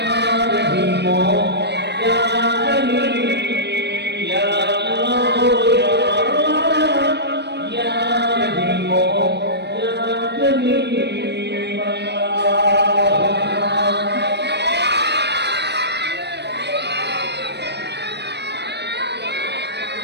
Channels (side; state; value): left; late; 0.50 ms